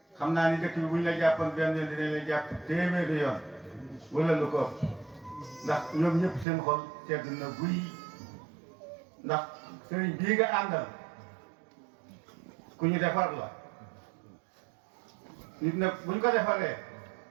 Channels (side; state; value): left; drops out; at 6.5 s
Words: xam naa ni dëkk bi buñ la jàppoon benn yoon dinañ la jàpp téeméeri yoon wala lu ko ndax ñoom ñëpp seen xol sedd na guy ndax sëriñ bii nga àndal ku ñu defar la nit nag buñ ko defaree